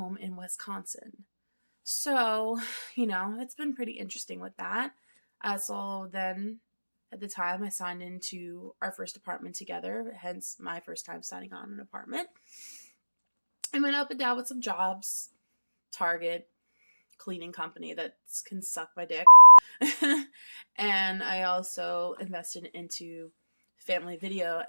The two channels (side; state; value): both; inverted; correlation -1.00